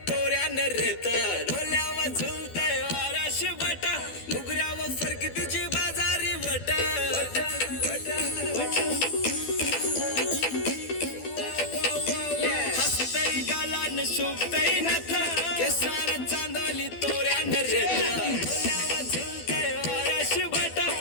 तोऱ्यानं रेत ढोल्यावर झुलतय वाराशी बटा मुगऱ्यावर फरकी तुझी बाजारी वट हसतय गालान शोभतय नथा केसानं चांदली तोऱ्यानं रेत ढोल्यावर झुलतय वाराशी बटा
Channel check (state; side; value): late; right; 12 ms